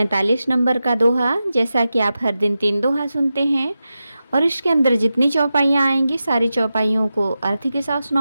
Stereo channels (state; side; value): inverted; both; correlation -0.92